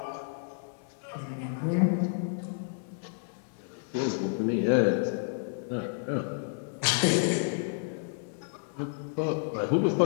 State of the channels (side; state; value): right; silent; 58 dB below the other